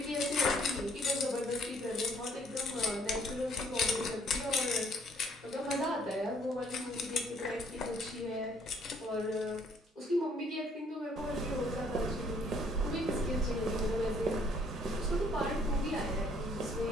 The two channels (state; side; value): normal; both; correlation 0.63